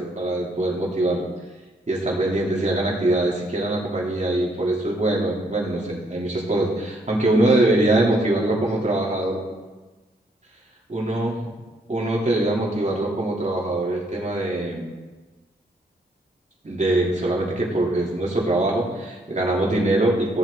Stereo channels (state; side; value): normal; both; correlation 0.70